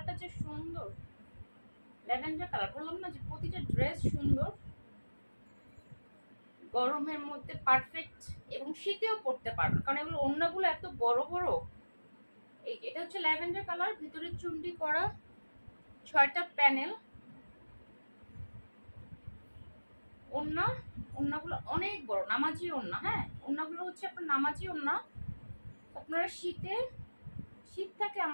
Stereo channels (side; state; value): both; inverted; correlation -1.00